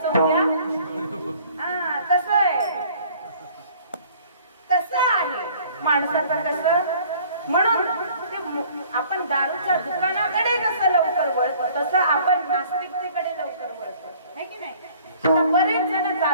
उद्या. तसं आहे, तसं आहे माणसाचं कसं. म्हणून आपण दारूच्या दुकानाकडे कसं लवकर वळतो, तसं आपण नास्तिकतेकडे लवकर वळतो, है की नाही. बरेच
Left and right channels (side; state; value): both; inverted; correlation -0.54